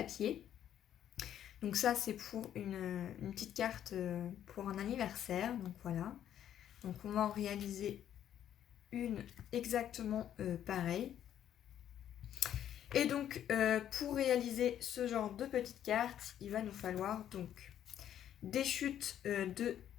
Donc ça, c'est pour une petite carte pour un anniversaire. Donc voilà. Donc on va en réaliser une exactement pareille. Et donc pour réaliser ce genre de petite carte, il va nous falloir donc des chutes de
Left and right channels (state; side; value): quieter; right; 10.5 dB